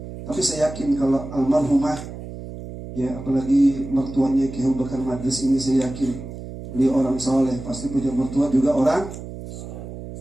Tapi saya yakin kalau almarhumah ya apalagi mertuanya Ki Abu Bakar Madris ini, saya yakin beliau orang soleh, pasti punya mertua juga orang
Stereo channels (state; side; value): noise; right; hum, 11 dB below the sound